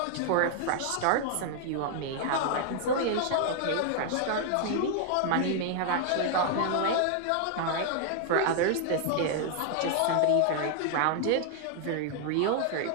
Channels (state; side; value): different; both; correlation 0.00